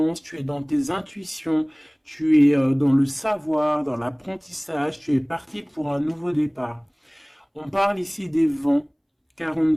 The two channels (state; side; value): identical; both; correlation 1.00